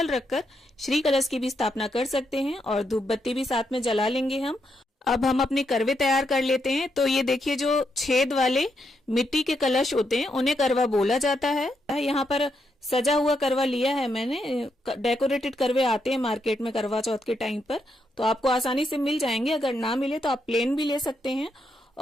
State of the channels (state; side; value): normal; both; correlation 0.80